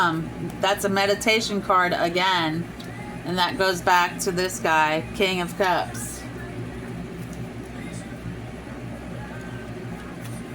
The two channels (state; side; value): identical; both; correlation 1.00